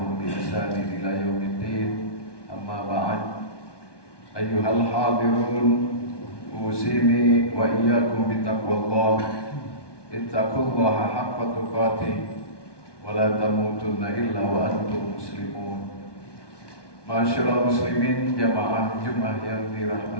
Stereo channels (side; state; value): right; late; 1.2 ms